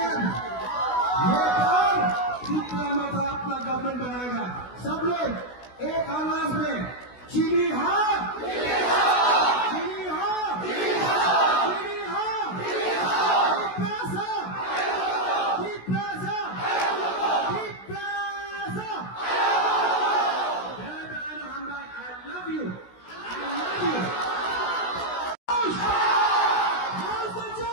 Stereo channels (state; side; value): late; right; 16 ms